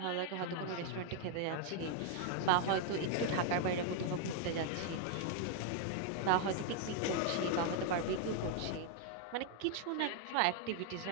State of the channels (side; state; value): both; different; correlation 0.00